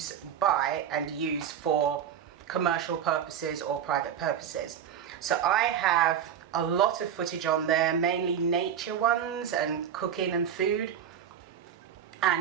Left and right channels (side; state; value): left; quieter; 8.8 dB